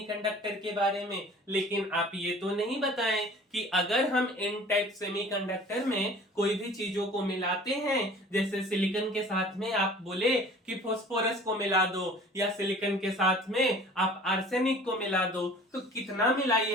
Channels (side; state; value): both; normal; correlation 0.46